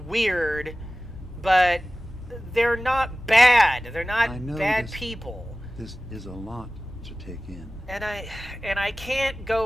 but they're not bad. They're I not know bad this- people. This is a lot to take in. And I can't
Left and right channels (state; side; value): normal; both; correlation 0.97